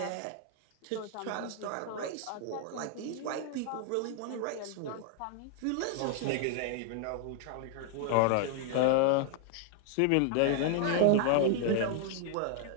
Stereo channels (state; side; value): different; both; correlation 0.00